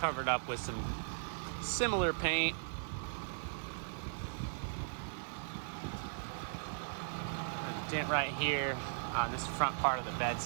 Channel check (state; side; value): silent; left; digital silence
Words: up with some similar paint. A dent right here on this front part of the